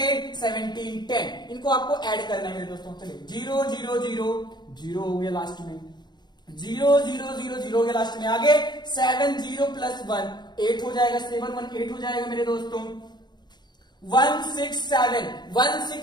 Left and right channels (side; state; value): right; late; 0.21 ms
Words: 17 10, इनको आपको ऐड करना है मेरे दोस्तों। चलिए 0 0 0 0 हो गया लास्ट में, 0 0 0 0 हो गया लास्ट में। आगे 7 0 प्लस 1 8 हो जाएगा, 7 1 8 हो जाएगा मेरे दोस्तों। 167